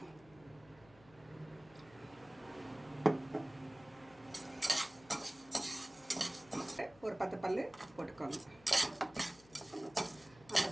ஒரு 10 பல்லு போட்டுக்கோங்க. அந்த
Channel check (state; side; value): noise; left; hum, 24 dB below the sound